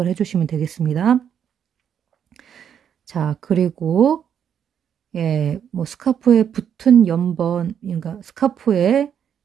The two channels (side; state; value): left; quieter; 8.5 dB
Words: 해주시면 되겠습니다. 자, 그리고 예, 뭐 스카프에 붙은 연번, 그러니까 스카프에